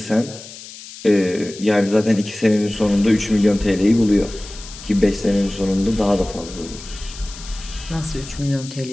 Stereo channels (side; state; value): left; noise; hiss, 15 dB below the sound